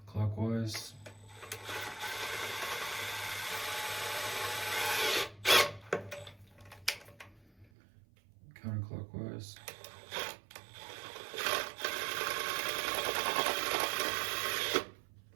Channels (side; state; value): left; drops out; at 7.7 s